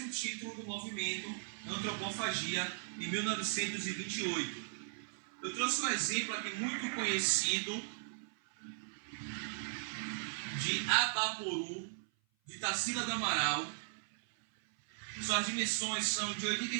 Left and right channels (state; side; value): silent; left; 53 dB below the other